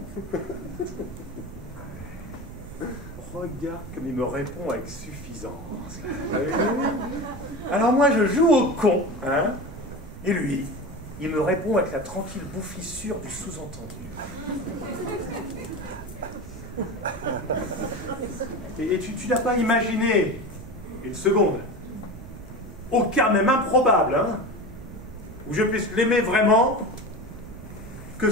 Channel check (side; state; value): right; noise; rumble, 15 dB below the sound